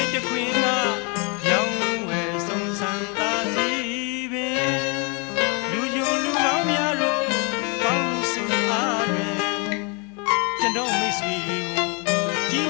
ခွင်ကရောင်းဝယ်ဆုံးဆန်းသာစီပင်လူယုံလူကောင်းများတို့ပေါင်းစုအားတွင်ကျွန်တော်မိတ်ဆွေတွေကိုကြီး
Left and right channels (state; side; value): quieter; right; 33.2 dB